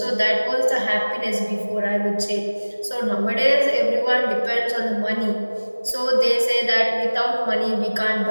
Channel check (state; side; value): inverted; both; correlation -1.00